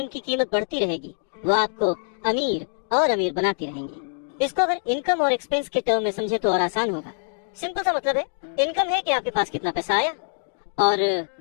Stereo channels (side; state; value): right; silent; 62 dB below the other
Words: कीमत बढ़ती रहेगी, वो आपको अमीर और अमीर बनाती रहेंगी। इसको अगर इनकम और एक्सपेंस के टर्म में समझे तो और आसान होगा। सिंपल सा मतलब है, इनकम है कि आपके पास कितना पैसा आया और